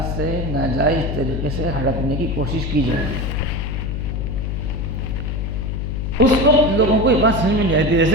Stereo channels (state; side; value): noise; left; hum, 2 dB below the sound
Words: سے ناجائز طریقے سے ہڑپنے کی کوشش کی جائے گی۔ اس وقت لوگوں کو یہ بات سمجھ میں نہیں آتی